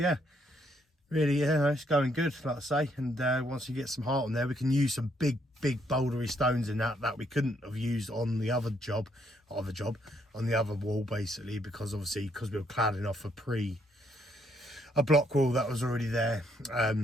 really, yeah, it's going good, like I say. And once you get some heart on there, we can use some big bouldery stones in that we couldn't have used on the other job, on the other wall basically, because we were cladding off a block wall that was already there.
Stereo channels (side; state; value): both; normal; correlation 0.72